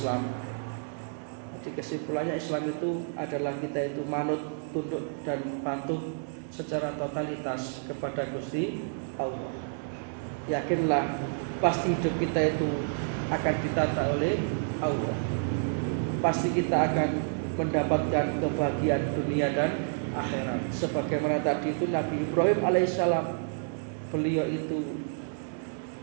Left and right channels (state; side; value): silent; left; digital silence